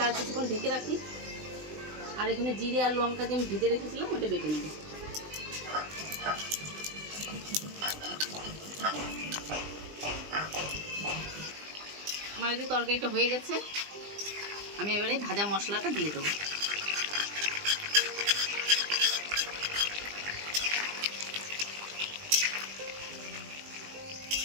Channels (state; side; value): late; left; 20 ms